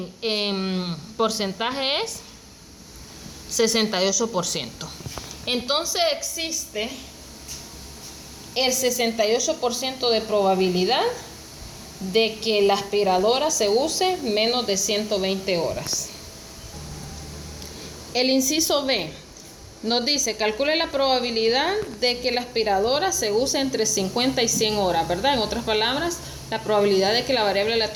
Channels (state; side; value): identical; both; correlation 1.00